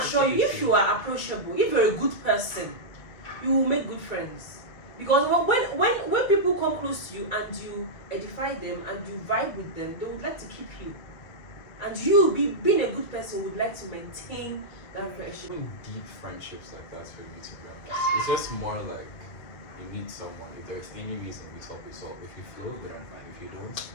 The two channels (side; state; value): right; late; 2.2 ms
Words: you, if you are approachable, if you're a good person, you will make good friends. Because when people come close to you and you edify them and you vibe with them, they would like to keep you. And you, being a good person, would like to maintain that friendship. Even deep friendships like that for me, to be honest. It's just more like you meet someone. If there's any reason we talk, we solve. If you flow, good and fine. If you don't,